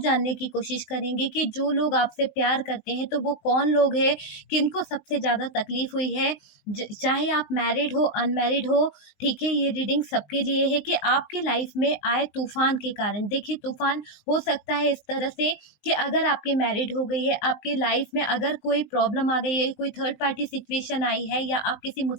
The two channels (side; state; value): right; late; 20 ms